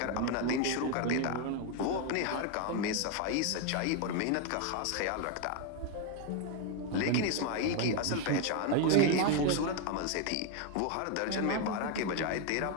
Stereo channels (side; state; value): both; different; correlation 0.01